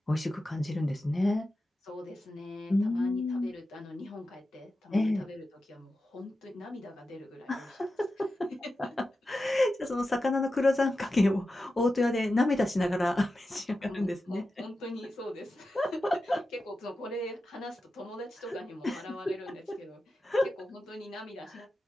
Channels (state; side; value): normal; both; correlation 0.92